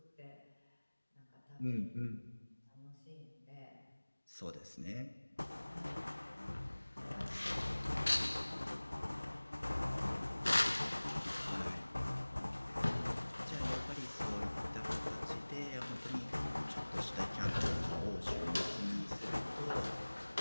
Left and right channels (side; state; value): both; inverted; correlation -1.00